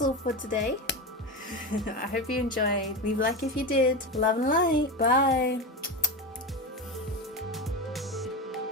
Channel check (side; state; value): both; normal; correlation 0.20